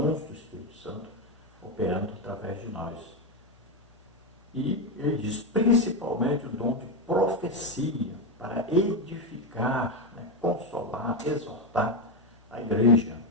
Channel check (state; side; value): normal; both; correlation 0.10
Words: do Espírito Santo operando através de nós. E ele diz principalmente o dom de profecia, para edificar, consolar, exortar a igreja.